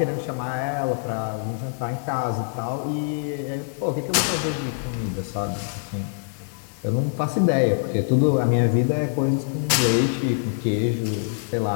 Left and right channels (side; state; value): right; silent; digital silence